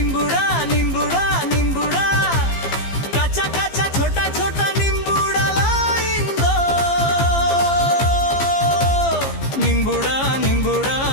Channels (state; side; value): late; right; 15 ms